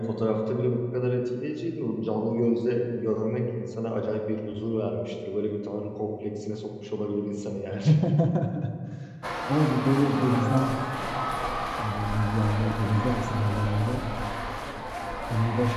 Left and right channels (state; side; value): identical; both; correlation 1.00